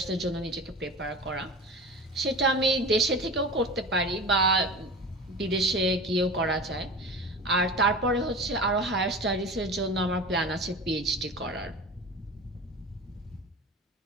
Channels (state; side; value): normal; both; correlation 0.33